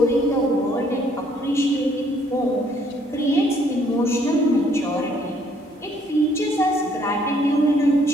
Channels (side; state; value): both; normal; correlation 0.65